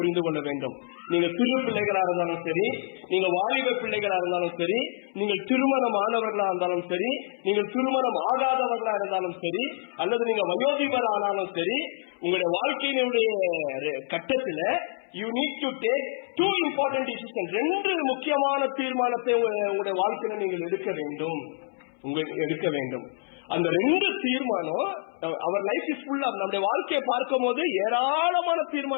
கொள்ள வேண்டும். நீங்க சிறு பிள்ளைகளா இருந்தாலும் சரி, நீங்க வாலிப பிள்ளைகளா இருந்தாலும் சரி, நீங்கள் திருமணமானவர்களா இருந்தாலும் சரி, நீங்கள் திருமணம் ஆகாதவர்களா இருந்தாலும் சரி, அல்லது நீங்க வயோதிபர் ஆனாலும் சரி, உங்களுடைய வாழ்க்கையினுடைய கட்டத்துல you need to take two important decisions. ரெண்டு முக்கியமான தீர்மானத்தை உங்களுடைய வாழ்க்கையில நீங்கள் எடுக்க வேண்டும். அந்த ரெண்டு தீர்மானம் அவர் லைஃப் இஸ் ஃபுல் ஆஃப். நம்முடைய வாழ்க்கையை பார்க்கும் போது ஏராளமான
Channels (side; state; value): right; silent; 60 dB below the other